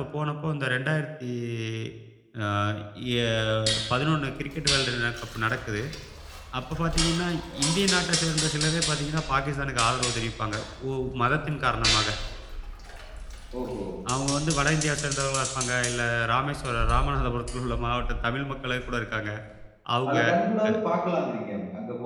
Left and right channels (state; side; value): identical; both; correlation 1.00